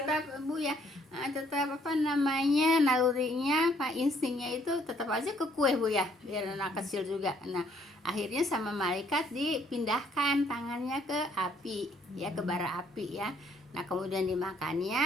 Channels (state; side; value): normal; both; correlation 0.65